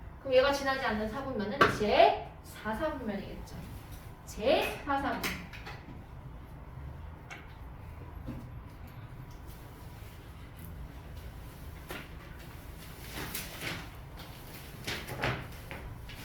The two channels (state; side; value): identical; both; correlation 1.00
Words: 그럼 얘가 지나지 않는 사분면은 제4사분면이겠죠. 제4사분면.